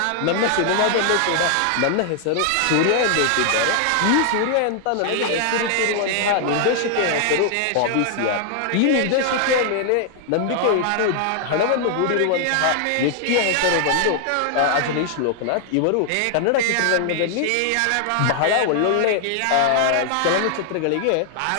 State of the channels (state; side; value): different; both; correlation 0.00